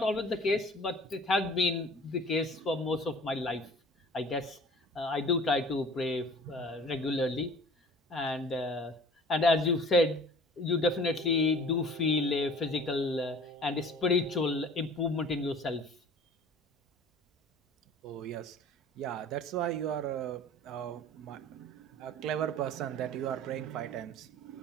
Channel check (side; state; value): both; normal; correlation 0.46